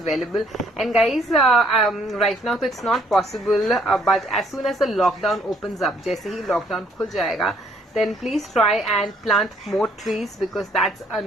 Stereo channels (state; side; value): normal; both; correlation 0.65